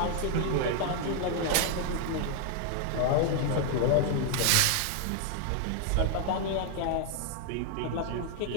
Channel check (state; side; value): different; both; correlation 0.00